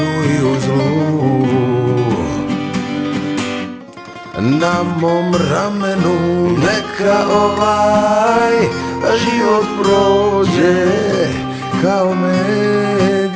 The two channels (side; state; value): both; identical; correlation 1.00